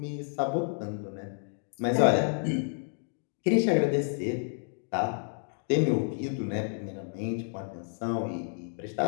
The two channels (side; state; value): right; silent; digital silence